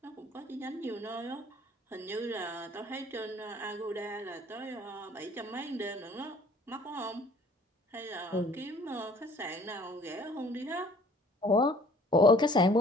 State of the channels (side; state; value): both; normal; correlation 0.54